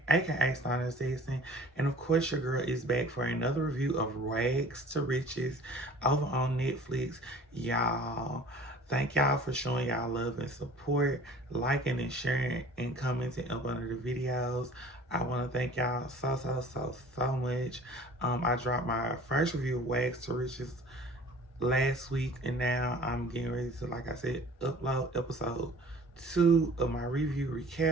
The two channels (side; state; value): both; normal; correlation 0.47